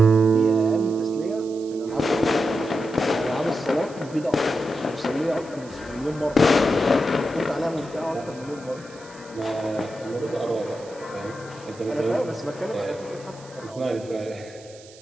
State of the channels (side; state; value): right; noise; hiss, 22 dB below the sound